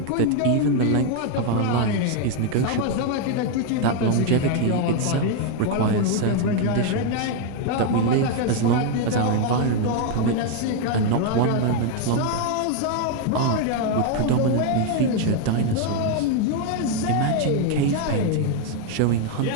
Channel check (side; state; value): both; different; correlation 0.01